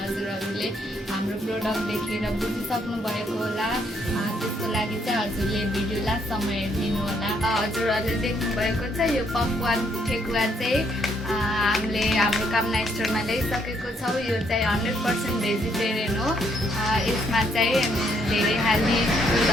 हजुरहरूले हाम्रो प्रोडक्ट देखेर बुझिसक्नु भएको होला। त्यसको लागि चाहिँ हजुरले भिडियो लास्टसम्म हेरिदिनु होला। हजुरहरूले देख्नुभएको छ यो पकवान ठेकुवा चाहिँ हामीले हाम्रो कामना स्टोरमा ल्याइसकेको छौँ। यो चाहिँ 100% भेजिटेरियन हो। यसमा चाहिँ धेरै हेल्दी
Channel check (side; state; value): both; normal; correlation 0.71